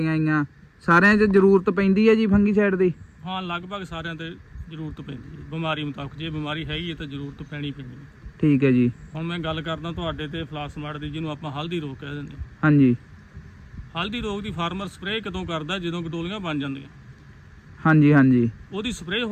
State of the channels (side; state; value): both; identical; correlation 1.00